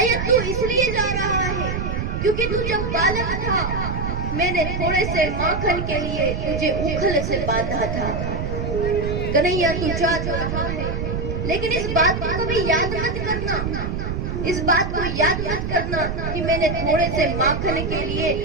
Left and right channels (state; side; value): noise; right; rumble, 3 dB below the sound